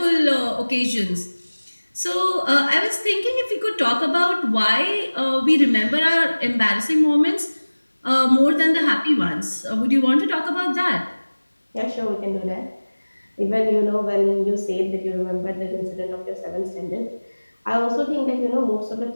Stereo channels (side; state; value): both; inverted; correlation -1.00